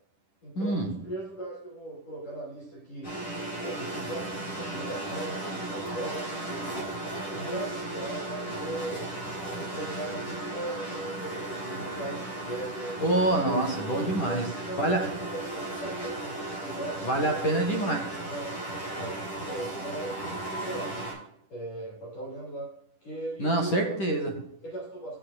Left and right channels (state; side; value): late; right; 10 ms